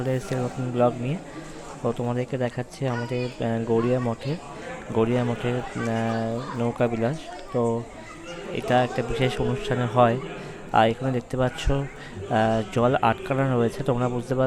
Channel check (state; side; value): identical; both; correlation 1.00